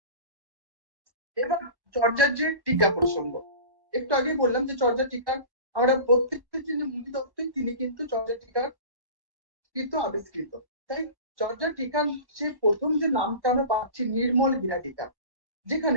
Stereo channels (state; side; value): late; left; 1.1 ms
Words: এবার চর্যার যে টিকা প্রসঙ্গ, একটু আগে বললাম যে চর্যা টিকার আমরা প্রত্যেকটা যিনি মুনি দত্তই তিনি কিন্তু চর্যা টিকার কৃত আবিষ্কৃত। তাই চর্যা টিকার যে প্রথম যে নামটা আমরা পাচ্ছি নির্মল গিরা টিকা,